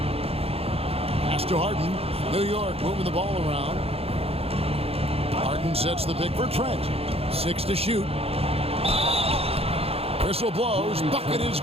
Pass to Harden. New York moving the ball around. Harden sets the pick for Trent. 6 to shoot. Whistle blows. Bucket is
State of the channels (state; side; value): late; left; 0.29 ms